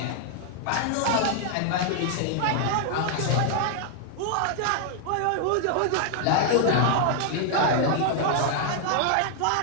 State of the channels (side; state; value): both; different; correlation 0.00